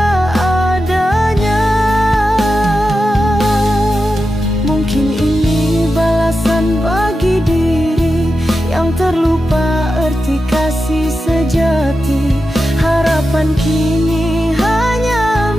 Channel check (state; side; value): normal; both; correlation 0.90